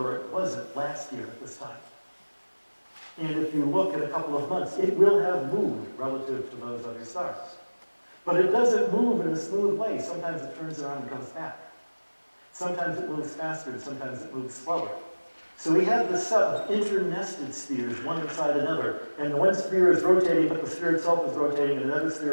it wasn't last year at this time. And if you look at a couple of months, it will have moved relative to those other stars. But it doesn't move in a smooth way. Sometimes it turns around and comes back. Sometimes it moves faster, and sometimes it moves slower. So we have this set of internested spheres, one inside another, and one sphere is rotating, but the sphere itself is rotating, and another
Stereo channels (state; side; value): inverted; both; correlation -1.00